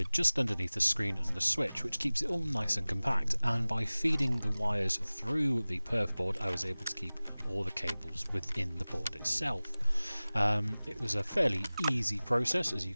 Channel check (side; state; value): both; inverted; correlation -0.99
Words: just underneath the screen and the switch, which keeps it all nice and compact. And by feeding the wires through the Perfboard, I was able to keep all the cables within the board itself. It was a fairly easy process, as you